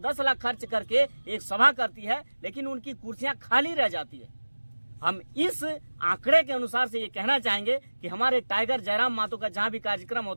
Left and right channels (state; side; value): inverted; both; correlation -1.00